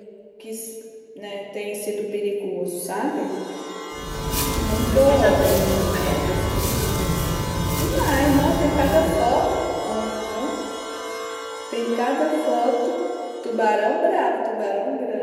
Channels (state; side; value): identical; both; correlation 1.00